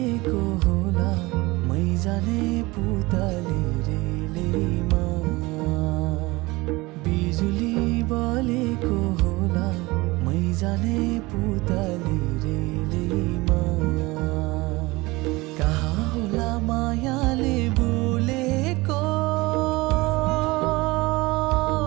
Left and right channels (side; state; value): left; quieter; 22.0 dB